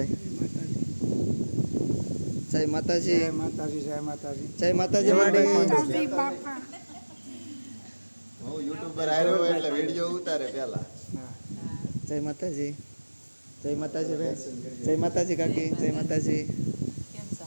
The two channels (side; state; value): both; inverted; correlation -1.00